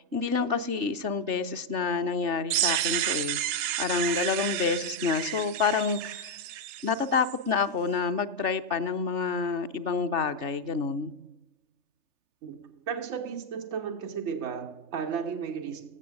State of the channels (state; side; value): late; left; 3.3 ms